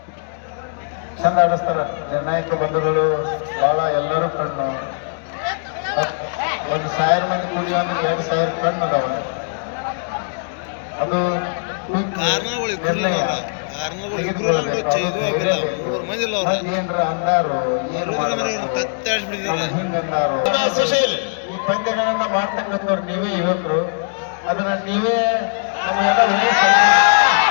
ಚಂದ ಆಡಿಸ್ತಾರ ನಿರ್ಣಾಯಕ ಬಂಧುಗಳು ಬಹಳ ಎಲ್ಲರೂ ಕಣ್ಣು. 1,000 ಮಂದಿ ಕುಡಿಯೋ ಅಂದ್ರೆ 2,000 ಕಣ್ಣು ಅದಾವ. ಅದು ನಿರ್ಣಯ ತೆಗೆದುಕೊಳ್ಬೇಕು. ಏನ್ರ ಅಂದಾರು ಏನು ಮಾಡಬೇಕು ಹಿಂಗ ಅಂದಾರು. ಈ ಪಂದ್ಯಗಳನ್ನ ಮಾಡ್ತಕ್ಕಂಥವ್ರು ನೀವೇ ಯುವಕರು. ಅದನ್ನ ನೀವೇ ನಮಗೆಲ್ಲ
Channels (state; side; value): silent; right; digital silence